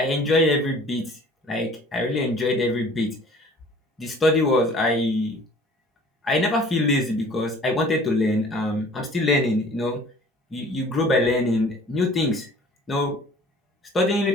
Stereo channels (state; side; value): normal; both; correlation 0.49